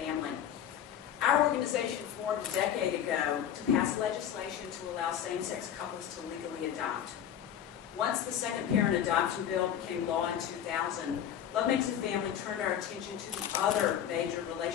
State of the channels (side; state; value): right; quieter; 9.7 dB